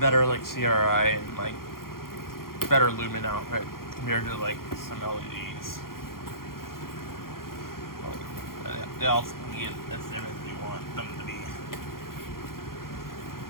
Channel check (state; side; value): late; right; 0.92 ms